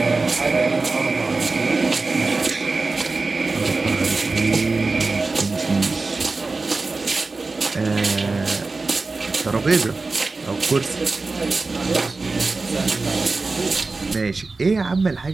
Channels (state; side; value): quieter; left; 3.7 dB